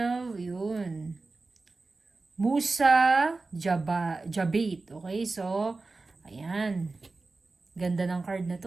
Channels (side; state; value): left; quieter; 3.6 dB